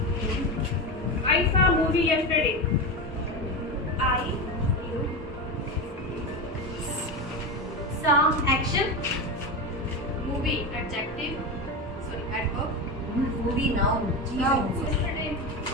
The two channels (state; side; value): normal; both; correlation 0.19